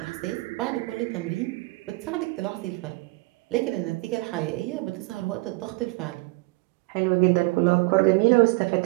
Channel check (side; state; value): left; quieter; 25.1 dB